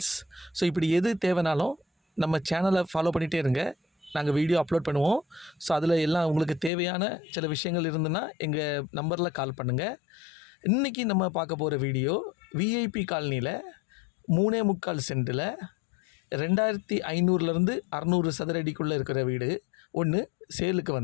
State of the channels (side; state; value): right; drops out; at 6.7 s